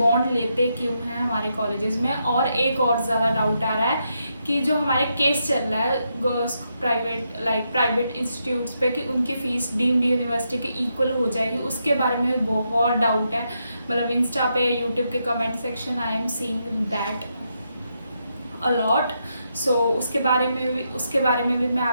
लेते क्यों हैं हमारे कॉलेजेस में। और एक और ज़्यादा डाउट आ रहा है कि जो हमारे केस चल रहा है प्राइवेट इंस्टीट्यूट्स पे कि उनकी फ़ीस डीम्ड यूनिवर्सिटी के इक्वल हो जाएगी, उसके बारे में बहुत डाउट है। मतलब इंस्टा पे, यूट्यूब के comment section I am seeing that a lot. So उसके बारे में भी मैं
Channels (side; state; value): both; inverted; correlation -0.81